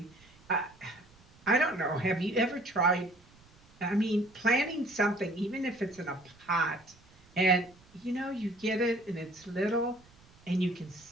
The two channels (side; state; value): right; noise; rumble, 28 dB below the sound